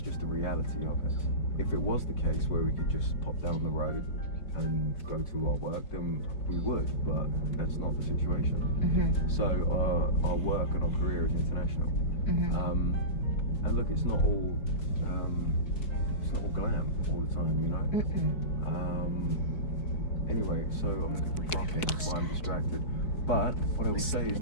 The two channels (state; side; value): late; right; 4.6 ms